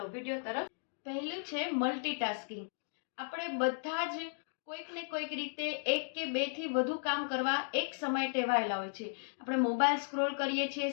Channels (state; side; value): silent; right; digital silence